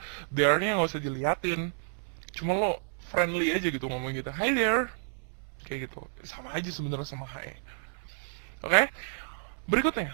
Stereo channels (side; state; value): left; silent; 57 dB below the other